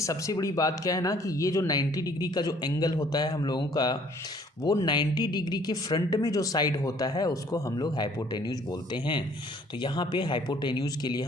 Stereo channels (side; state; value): both; normal; correlation 0.59